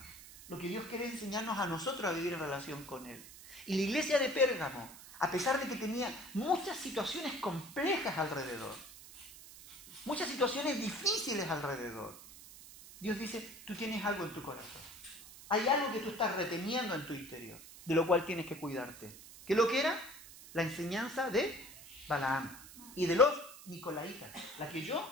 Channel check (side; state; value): right; noise; hiss, 17 dB below the sound